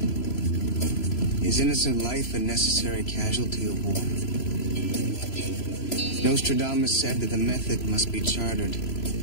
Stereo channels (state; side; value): late; right; 3.0 ms